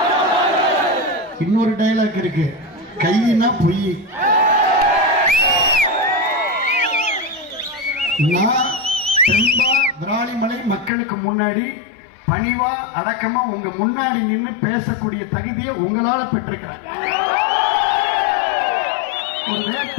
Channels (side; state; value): right; drops out; at 10.9 s